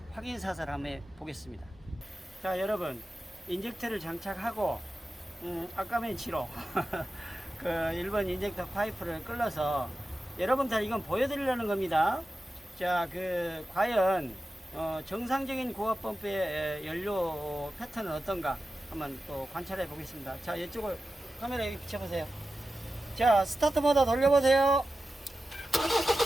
확인 사살 한번 보겠습니다. 자, 여러분, 인젝터를 장착하고 아까맨치로 그 1번 인젝터 파이프를 끌어서 여러분들 이건 보여드리려는 겁니다. 자, 과연 정상적인 고압 펌프의 연료 패턴은 어떤가 한번 또 관찰해 보겠습니다. 자, 이쪽을 카메라에 비춰보세요. 자, 스타트 모드 돌려보세요.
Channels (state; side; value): normal; both; correlation 0.93